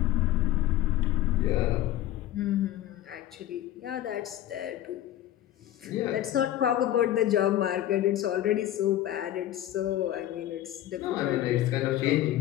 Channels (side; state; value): right; quieter; 13.1 dB